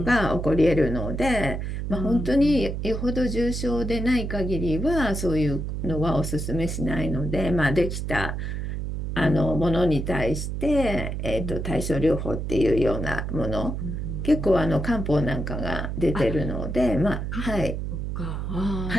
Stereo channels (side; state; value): right; noise; hum, 3 dB below the sound